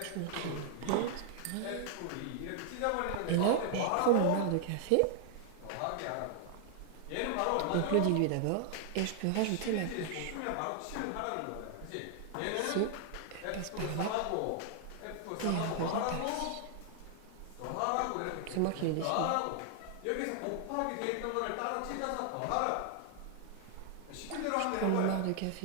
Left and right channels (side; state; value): both; different; correlation 0.00